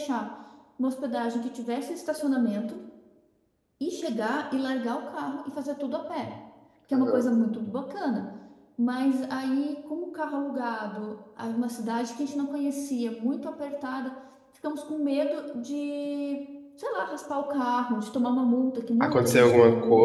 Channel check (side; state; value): both; identical; correlation 1.00